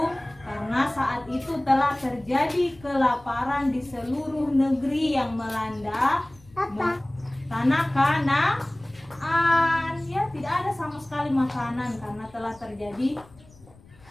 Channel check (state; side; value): noise; left; rumble, 25 dB below the sound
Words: Karena saat itu telah terjadi kelaparan di seluruh negeri yang melanda tanah Kanaan. Ya, tidak ada sama sekali makanan karena telah terjadi